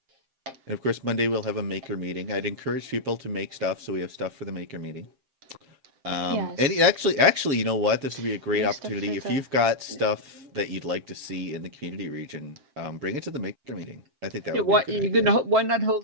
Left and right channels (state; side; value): late; left; 7.6 ms